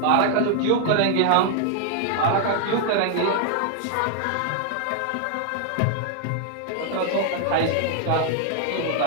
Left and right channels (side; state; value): both; different; correlation 0.00